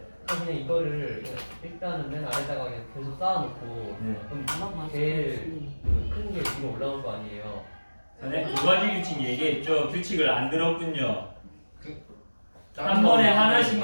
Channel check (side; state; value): both; inverted; correlation -1.00